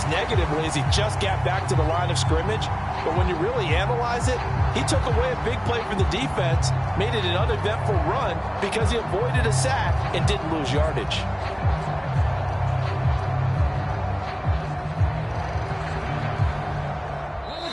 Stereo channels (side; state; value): both; identical; correlation 1.00